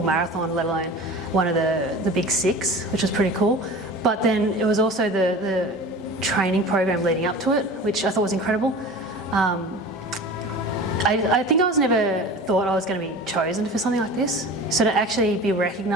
marathon, let alone one of the big six, which was pretty cool. But then it was also the training program leading up to it, which I thought was incredible. I think I never thought I was going to be chosen for something like this. So to actually be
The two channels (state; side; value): normal; both; correlation 0.37